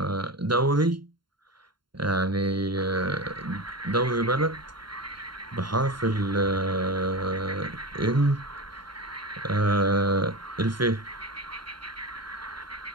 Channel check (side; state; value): left; late; 0.72 ms